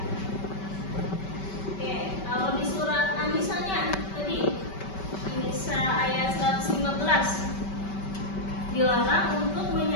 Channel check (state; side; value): late; right; 5.2 ms